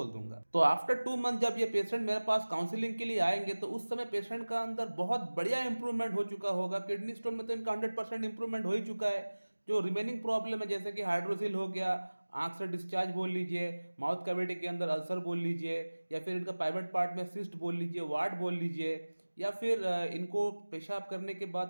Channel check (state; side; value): inverted; both; correlation -1.00